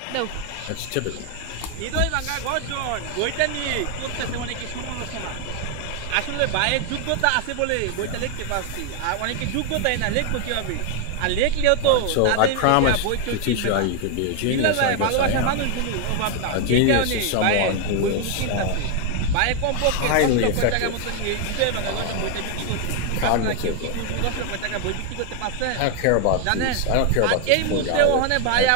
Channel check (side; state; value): both; different; correlation 0.00